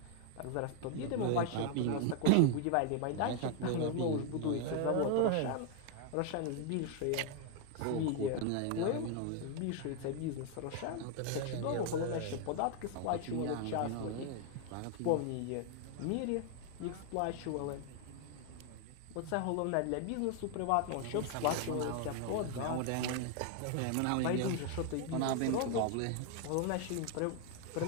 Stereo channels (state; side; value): different; both; correlation 0.00